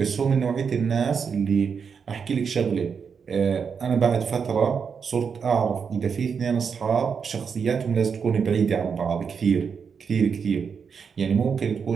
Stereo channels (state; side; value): quieter; left; 6.3 dB